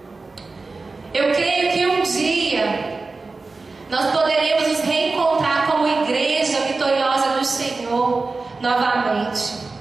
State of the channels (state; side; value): quieter; left; 3.8 dB